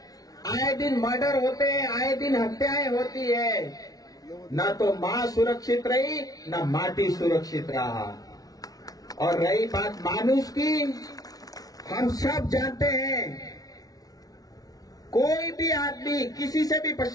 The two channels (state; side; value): late; right; 0.18 ms